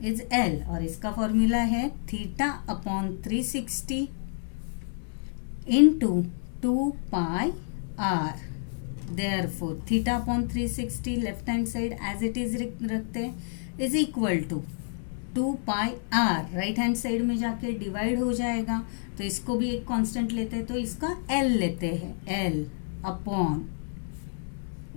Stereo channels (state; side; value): silent; right; digital silence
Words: is L, और इसका फॉर्मूला है theta upon 360 into 2 pi r. Therefore theta upon 360 left hand side as it is रखते हैं is equal to 2 pi r, right hand side में जाके डिवाइड हो जाएगा, तो इसको भी एक कांस्टेंट लेते हैं, तो इसका एल लेते हैं, L